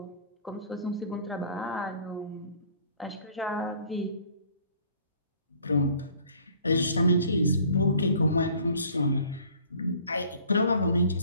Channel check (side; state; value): both; inverted; correlation -0.53